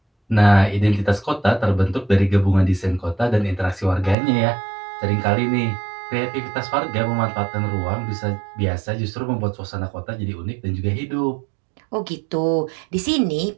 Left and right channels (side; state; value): left; drops out; at 4.2 s